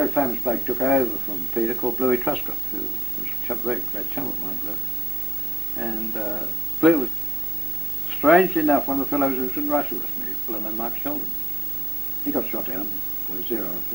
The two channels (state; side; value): normal; both; correlation 0.82